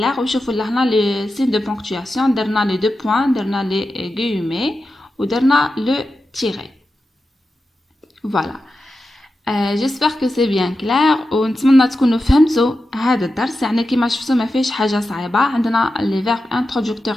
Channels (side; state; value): both; normal; correlation 0.91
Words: وشوفوا لهنا les signes de ponctuation درنا les deux points درنا les guillemets ودرنا le tiré. Voilà. j'espère que c'est bien clair ونتمنى تكونوا فهمتوا هذا الدرس. يعني كما شفتوا ما فيش حاجة صعيبة. عندنا les verbes